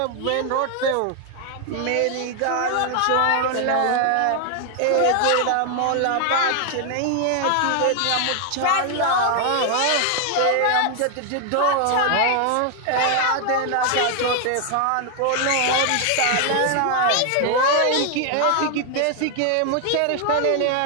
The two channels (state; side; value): different; both; correlation 0.00